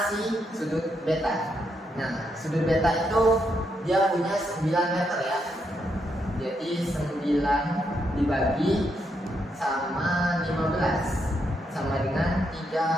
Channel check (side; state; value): both; normal; correlation 0.79